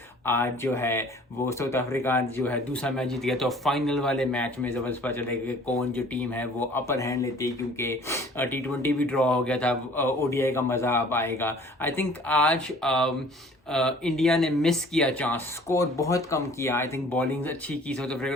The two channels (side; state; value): both; normal; correlation 0.51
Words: आज जो है वो साउथ अफ्रीका जो है दूसरा मैच जीत गया। तो फाइनल वाले मैच में ज़बरदस्त पता चलेगा कि कौन जो टीम है वो अपर हैंड लेती है, क्योंकि T20 भी ड्रॉ हो गया था। ओडीआई का मज़ा अब आएगा। आई थिंक आज इंडिया ने मिस किया चांस, स्कोर बहुत कम किया। आई थिंक बॉलिंग अच्छी की साउथ अफ्रीका